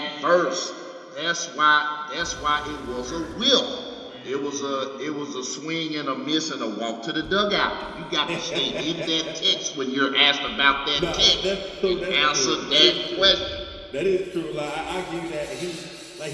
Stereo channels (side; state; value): both; identical; correlation 1.00